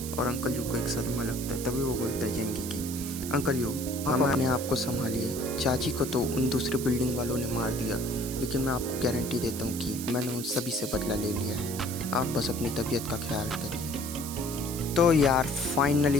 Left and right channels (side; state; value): right; noise; hiss, 8 dB below the sound